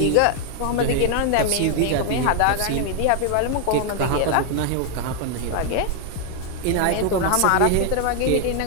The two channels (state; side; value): different; both; correlation 0.00